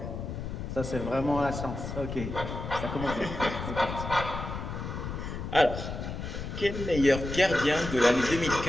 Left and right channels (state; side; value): noise; left; rumble, 6 dB below the sound